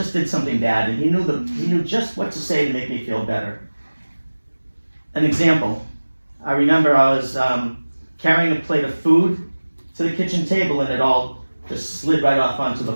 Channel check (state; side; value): inverted; both; correlation -1.00